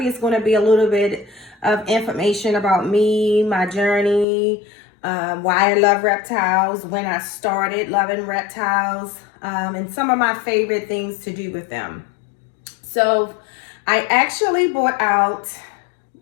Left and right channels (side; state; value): right; drops out; at 4.2 s